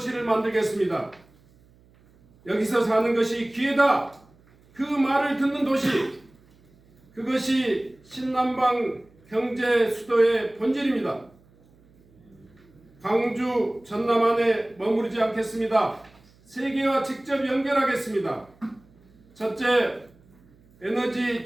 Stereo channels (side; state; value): right; noise; hum, 30 dB below the sound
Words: 만들겠습니다. 여기서 사는 것이 기회다. 그 말을 듣는 도시, 그것이 신남방 경제 수도의 본질입니다. 광주, 전남 안에 머무르지 않겠습니다. 세계와 직접 연결하겠습니다. 첫째, 에너지